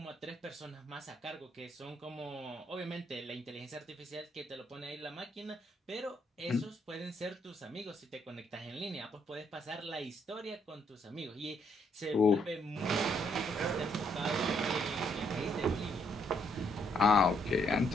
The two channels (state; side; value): normal; both; correlation 0.72